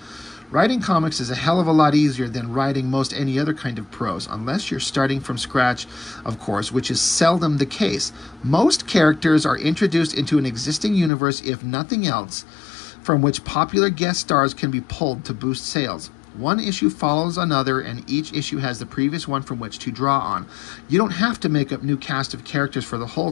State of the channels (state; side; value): drops out; right; at 11.1 s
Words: Writing comics is a hell of a lot easier than writing most any other kind of prose, unless you're starting from scratch, of course, which is seldom the case. Most characters are introduced into an existing universe, if nothing else, from which popular guest stars can be pulled to boost sales. One issue follows another, and each issue has the previous one from which to draw on. You don't have to make up new cast of characters for the